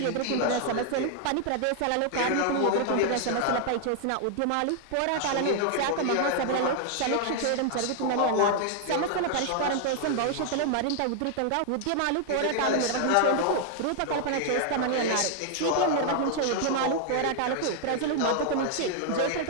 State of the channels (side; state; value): both; different; correlation 0.00